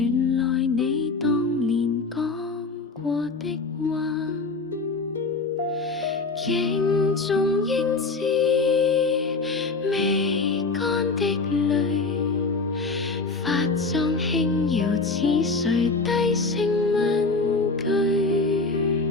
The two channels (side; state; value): right; quieter; 3.9 dB